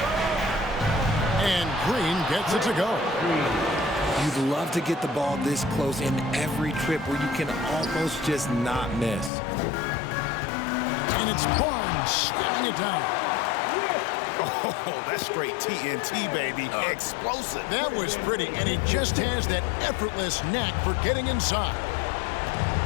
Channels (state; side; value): drops out; right; at 9.3 s